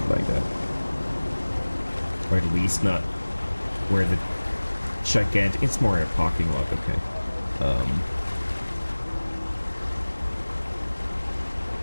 like that. Or at least not where the gigantic... It's more a parking lot, okay.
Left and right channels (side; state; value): both; inverted; correlation -1.00